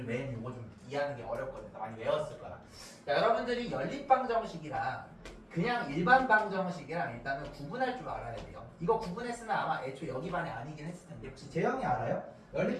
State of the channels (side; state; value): both; identical; correlation 1.00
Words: 외에는 이거 좀 이해하는 게 어렵거든요. 많이 외웠을 거야. 자, 여러분들이 연립 방정식이랑 그냥 일반 방정식이랑 일단은 구분할 줄 알아야 돼요. 이거 구분했으면 아마 애초에 여기 반에 아니긴 했을 텐데 혹시 재영이 알아요? 연립